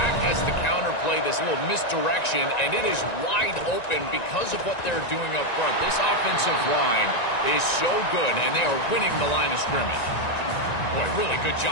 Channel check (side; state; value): right; late; 1.9 ms